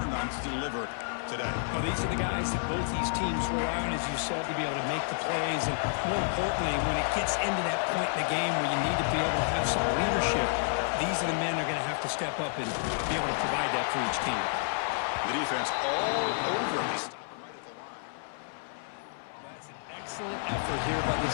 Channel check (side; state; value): right; silent; 58 dB below the other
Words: on to deliver today. Well, these are the guys that both these teams rely on, as you said, to be able to make the plays. And more importantly, when it gets into that point in the game where you need to be able to have some leadership, these are the men that are going to have to step up and be able to provide that for each team. The defense all over this. Excellent effort here by